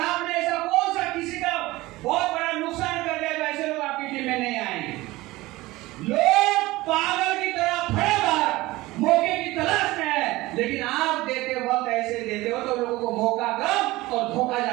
ऐसा कौन सा किसी का बहुत बड़ा नुकसान कर दिया जो ऐसे लोग आपकी टीम में नहीं आएंगे? लोग पागल की तरह खड़े बाहर मौके की तलाश में है, लेकिन आप देते वक्त ऐसे देते हो तो लोगों को मौका कम और धोखा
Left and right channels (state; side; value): quieter; left; 19.3 dB